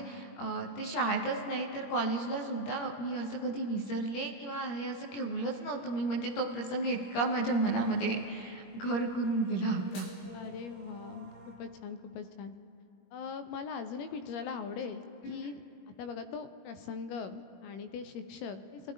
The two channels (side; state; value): right; late; 21 ms